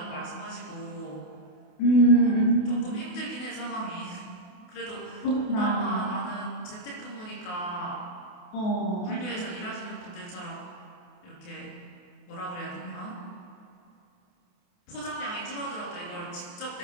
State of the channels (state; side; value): late; right; 28 ms